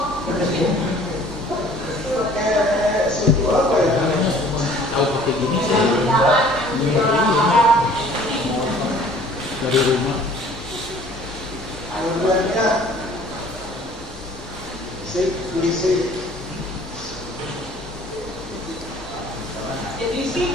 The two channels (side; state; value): both; normal; correlation 0.52